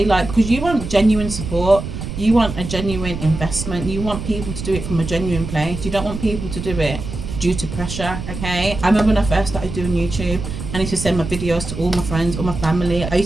Like, because you want genuine support, you want a genuine investment, you want people to do it from a genuine place. You don't want people to do it due to pressure, okay? I remember when I first started doing YouTube, I used to send my videos to all my friends, all my family. I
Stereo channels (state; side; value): noise; right; rumble, 7 dB below the sound